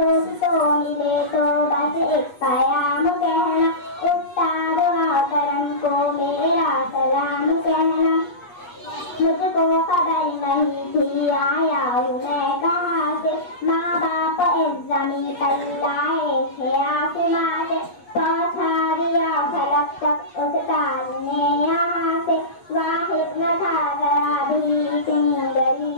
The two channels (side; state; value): right; late; 8.4 ms